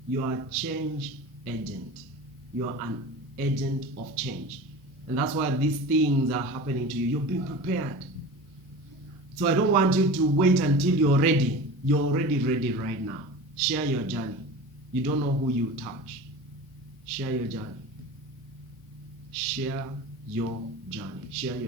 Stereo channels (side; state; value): both; normal; correlation 0.34